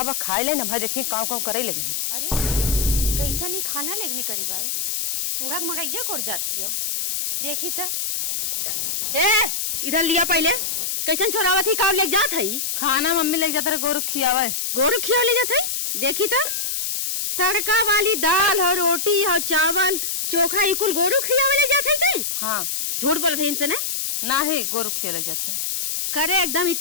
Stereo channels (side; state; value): left; noise; hiss, 1 dB below the sound